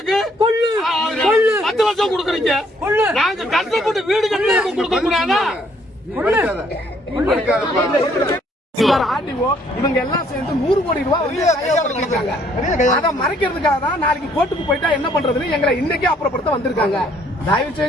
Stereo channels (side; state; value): both; normal; correlation 0.65